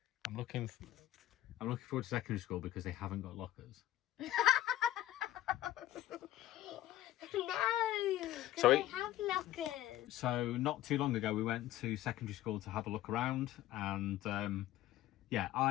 I'm looking forward to secondary school because they haven't got lockers. No, So they have lockers. So not too long ago we went to secondary school to have a look around, and yeah,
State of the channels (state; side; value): quieter; right; 14.2 dB